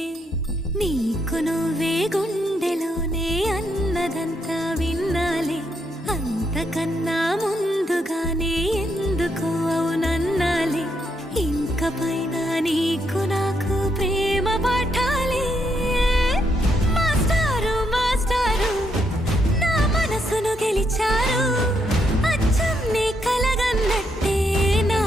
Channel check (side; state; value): both; normal; correlation 0.77